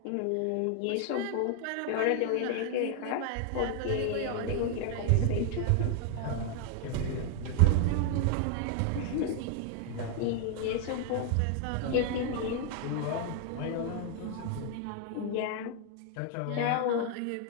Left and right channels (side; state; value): both; different; correlation 0.00